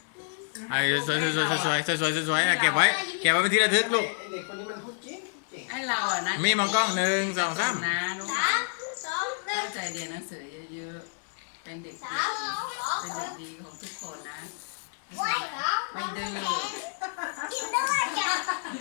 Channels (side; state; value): right; silent; 59 dB below the other